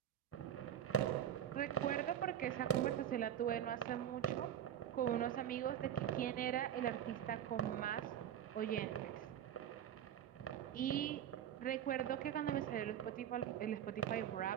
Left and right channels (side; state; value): left; quieter; 10.2 dB